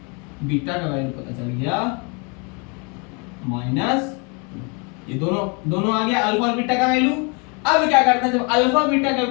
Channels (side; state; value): right; quieter; 33.0 dB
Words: बीटा का वैल्यू पता चल गया -2। ये दोनों आ गया, अल्फा और बीटा का वैल्यू। अब क्या करते हैं, जब अल्फा बीटा का